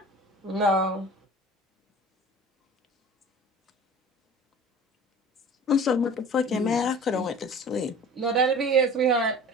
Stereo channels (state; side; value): normal; both; correlation 0.41